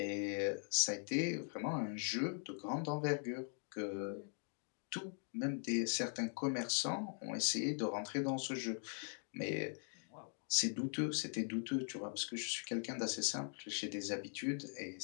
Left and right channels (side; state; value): right; silent; 50 dB below the other